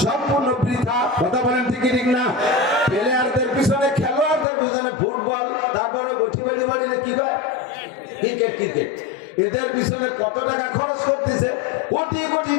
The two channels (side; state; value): right; drops out; at 4.5 s